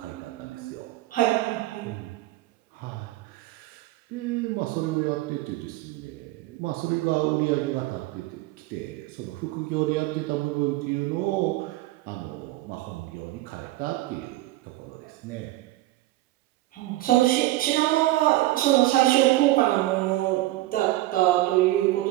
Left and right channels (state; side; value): quieter; left; 16.8 dB